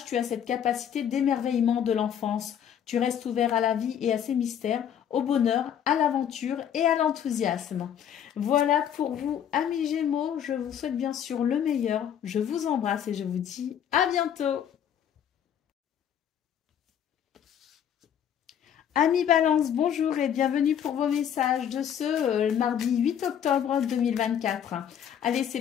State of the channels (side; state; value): right; quieter; 9.1 dB